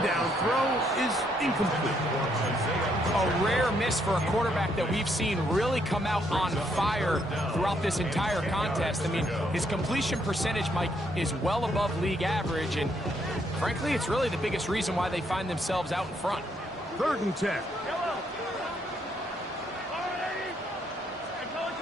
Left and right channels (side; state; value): both; normal; correlation 0.73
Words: down throw is incomplete. A rare miss for a quarterback that we've seen really come out on fire throughout this entire contest. I mean, his completion percentage, Mike, is well above league average, and frankly, it's really the biggest reason why they find themselves out in front. 3rd and 10.